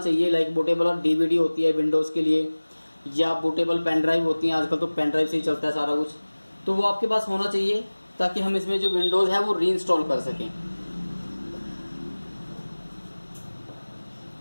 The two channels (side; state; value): both; inverted; correlation -1.00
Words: लाइक बूटेबल और डीवीडी होती है विंडोज के लिए, या बूटेबल पेन ड्राइव होती है, आजकल तो पेन ड्राइव से ही चलता है सारा कुछ, तो वो आपके पास होना चाहिए ताकि हम इसमें जो विंडोज है वो रीइंस्टॉल कर सकें।